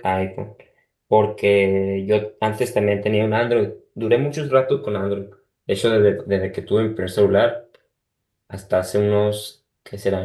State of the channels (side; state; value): both; identical; correlation 1.00